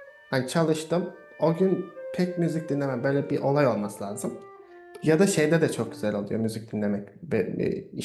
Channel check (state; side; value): identical; both; correlation 1.00